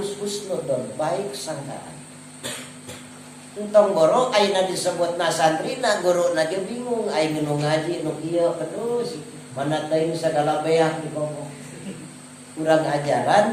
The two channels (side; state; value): both; identical; correlation 1.00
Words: husnudon, baik sangkaan. Entong borok ayeuna disebutna santrina, guruna ge bingung, aing nu ngaji nu kieu terus mana teuing sagala beak di komo. Urang ajaran